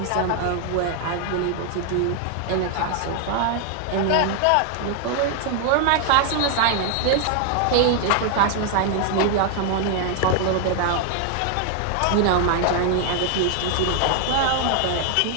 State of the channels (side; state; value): both; different; correlation 0.00